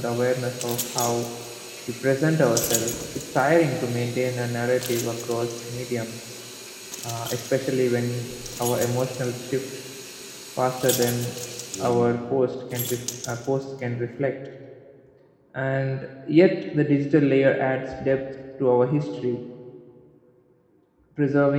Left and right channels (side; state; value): both; identical; correlation 1.00